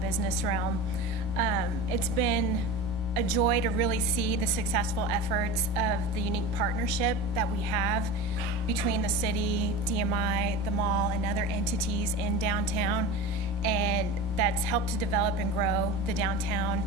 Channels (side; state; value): both; normal; correlation 0.29